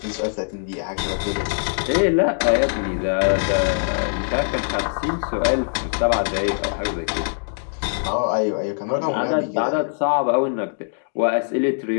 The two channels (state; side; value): silent; right; digital silence